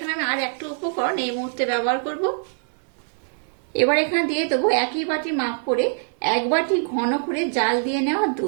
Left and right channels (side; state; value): left; silent; digital silence